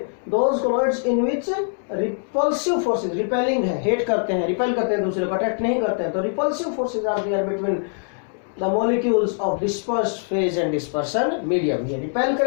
those colloids in which repulsive forces, repelling है, hate करते हैं, repel करते हैं दूसरे को, अट्रैक्ट नहीं करते हैं, तो repulsive forces are there between the molecules of dispersed phase and dispersion medium. ये repel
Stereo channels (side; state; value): right; silent; digital silence